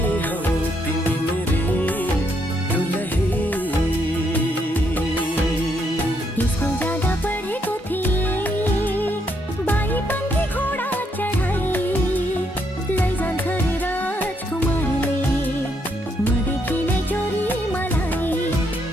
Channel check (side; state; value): both; normal; correlation 0.75